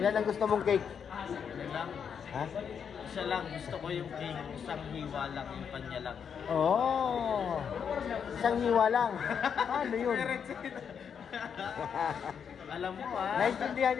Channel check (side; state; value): right; quieter; 7.2 dB